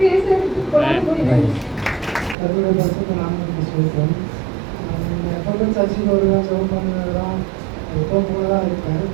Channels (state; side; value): drops out; left; at 2.4 s